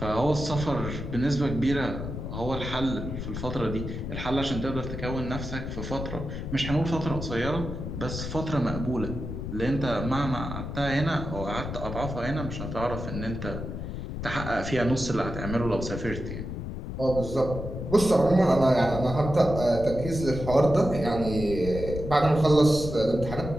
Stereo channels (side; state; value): left; noise; rumble, 6 dB below the sound